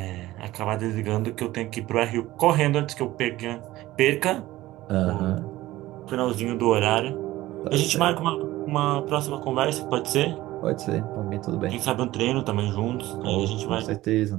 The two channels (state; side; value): quieter; left; 16.7 dB